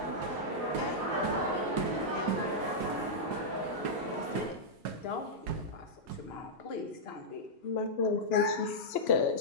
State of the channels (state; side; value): normal; both; correlation -0.08